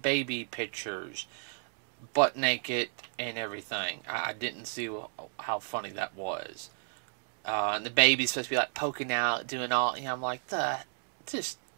baby pictures, butt naked and everything. I didn't see how funny that was. And the baby's supposed to be like poking out, doing all. I'm like, just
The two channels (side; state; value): left; silent; digital silence